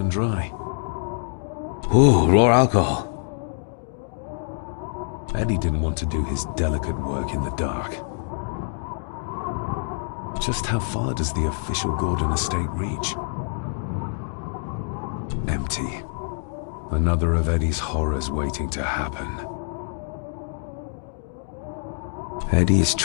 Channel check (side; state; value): right; silent; digital silence